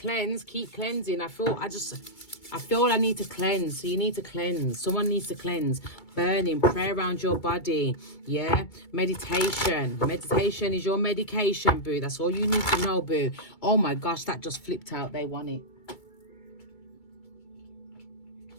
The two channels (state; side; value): late; right; 2.3 ms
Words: Keep cleansing. I feel I need to cleanse. So you need to cleanse. Someone needs to cleanse. Burning. Pray around your body. Yeah. Meditation. Meditation is your medication, boo. That's all you need to know, boo. Oh my gosh, that just flipped out. They want it.